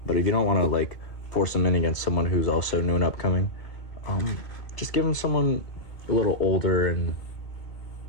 But if you don't want to like force him in against someone who's also new and upcoming, just give him someone a little older and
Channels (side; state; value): right; late; 2.1 ms